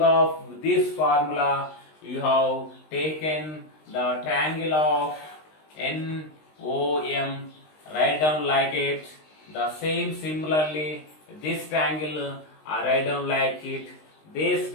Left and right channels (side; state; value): right; late; 19 ms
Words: of this formula, you have taken the triangle of NOM, write down like it, The same similarly, this triangle I write down like it, this